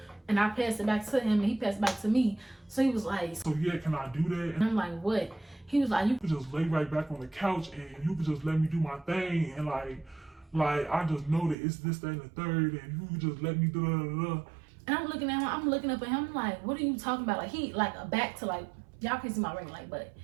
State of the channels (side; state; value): left; drops out; at 11.6 s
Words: and I passed it back to him, and he passed it back to me. So he was like, "So yeah, can I do that?" And I'm like, "What?" He was like, "You could just lay right back on the couch, and you could just let me do my thing, and like I just know that it's this, that, and the third, and you could just let me do da." And I'm looking at him, I'm looking up at him, like, what are you talking about? Like, he, like, a back to, like, y'all can see my ring light, but